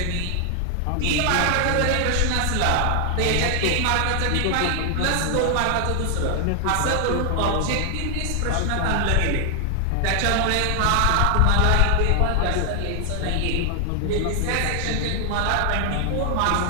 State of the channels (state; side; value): different; both; correlation 0.00